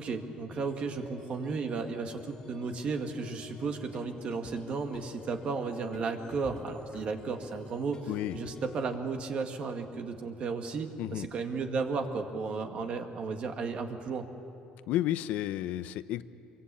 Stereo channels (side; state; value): both; normal; correlation 0.59